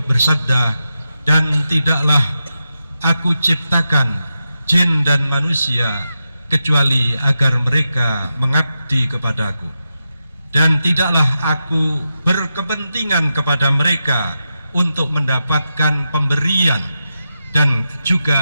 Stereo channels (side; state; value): both; inverted; correlation -0.89